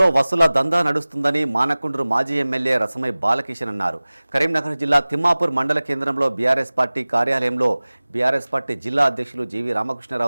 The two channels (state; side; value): inverted; both; correlation -0.99